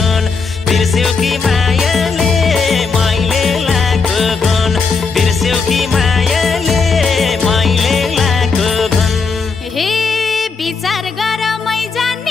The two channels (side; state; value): right; quieter; 4.7 dB